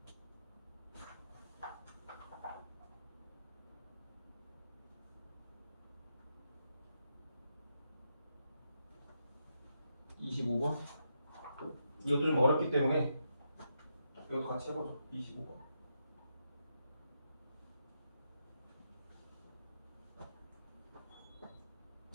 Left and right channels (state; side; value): inverted; both; correlation -0.83